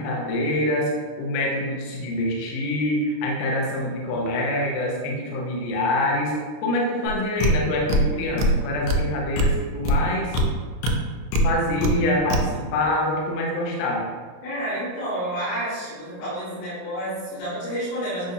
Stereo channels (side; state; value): right; late; 33 ms